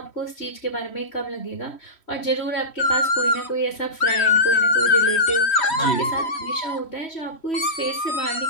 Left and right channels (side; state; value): right; late; 3.1 ms